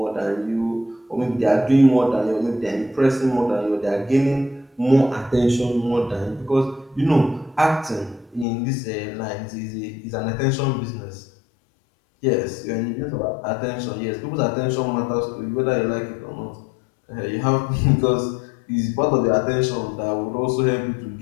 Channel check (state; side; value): drops out; right; at 8.5 s